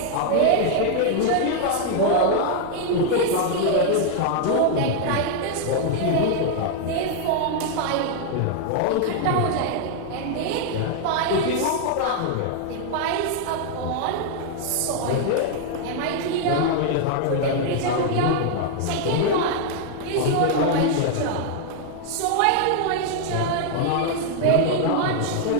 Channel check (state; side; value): different; both; correlation 0.00